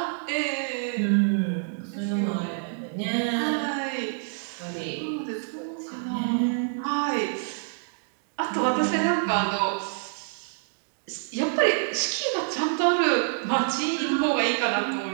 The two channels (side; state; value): left; silent; digital silence